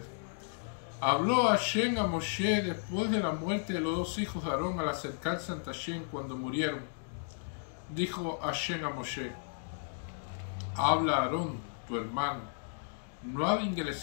Habló Hashem a Moshe después de la muerte de los dos hijos de Aarón al acercarse ante Hashem cuando murieron. Dijo Hashem a Moshe: habla a Aarón, tu hermano. No ha de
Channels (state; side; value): silent; right; digital silence